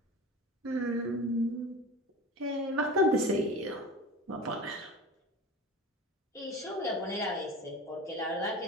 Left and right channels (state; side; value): normal; both; correlation 0.33